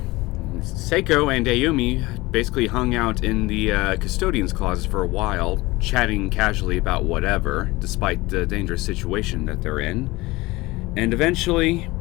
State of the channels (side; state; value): right; quieter; 20.9 dB